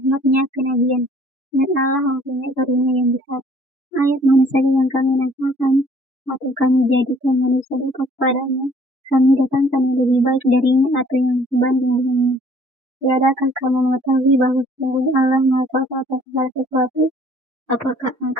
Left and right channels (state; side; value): normal; both; correlation 0.57